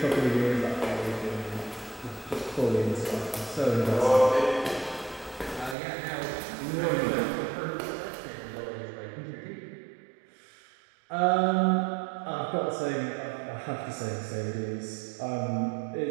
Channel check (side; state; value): left; drops out; at 5.8 s